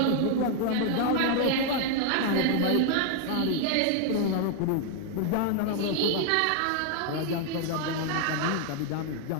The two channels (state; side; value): different; both; correlation 0.00